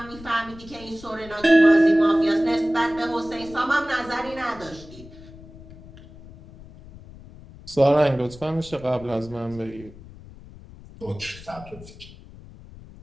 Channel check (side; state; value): left; noise; rumble, 19 dB below the sound